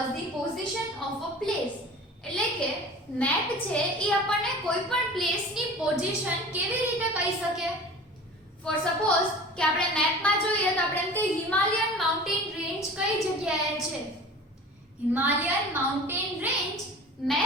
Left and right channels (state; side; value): normal; both; correlation 0.39